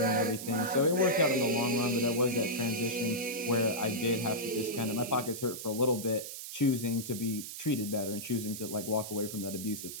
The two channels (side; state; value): right; noise; hiss, 9 dB below the sound